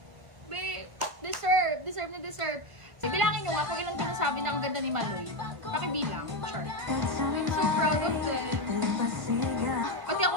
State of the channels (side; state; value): left; late; 1.6 ms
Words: Babe, deserve na deserve. Bilangin nyo nga kung ilan ko nasabi na ang ganda ni Maloy. Pakibilang, sure. I'm so proud of them. Pati ako